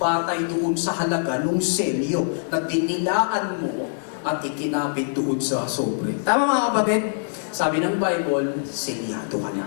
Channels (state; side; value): silent; right; digital silence